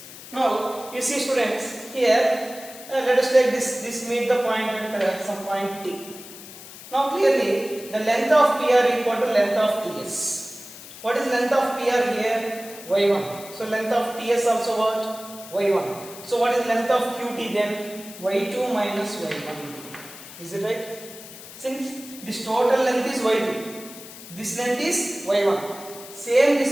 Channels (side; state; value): left; noise; hiss, 15 dB below the sound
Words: Now you see, students, here let us take this meet the point at some point T. Now clearly the length of PR equal to length of TS. What is length of PR here? y1. So length of TS also what? y1. So what is length of QT then? y2 minus y1. Is it right? Since this total length is y2, this length is y1. Same